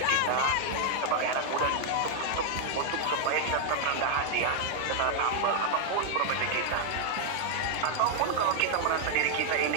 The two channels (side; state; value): both; different; correlation 0.00